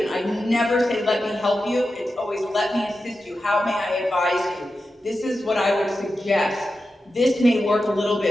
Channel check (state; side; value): normal; both; correlation 0.91